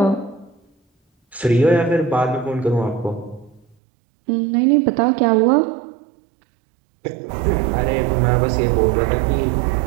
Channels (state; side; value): drops out; left; at 3.8 s